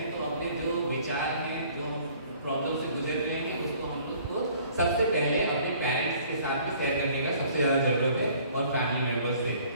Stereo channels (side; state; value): both; inverted; correlation -0.55